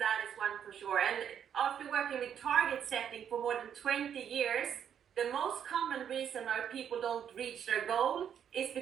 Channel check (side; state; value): left; quieter; 8.7 dB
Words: is one for sure. And after working with target setting for more than 20 years, the most common reason why people don't reach their goal is